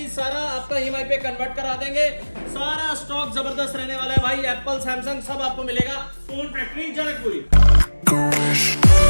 सारा आपका EMI पे कन्वर्ट करा देंगे। सारा स्टॉक जबरदस्त रहने वाला है भाई, एप्पल सैमसंग सब आपको मिलेगा फोन फैक्ट्री जनकपुरी।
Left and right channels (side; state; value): both; inverted; correlation -1.00